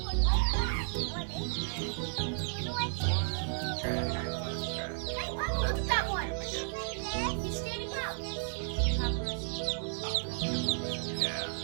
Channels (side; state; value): left; silent; digital silence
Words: Hey, Mama, look at that one. He's standing up.